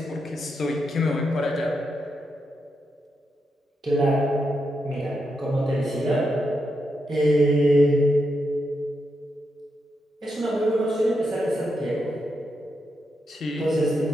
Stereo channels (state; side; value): normal; both; correlation 0.84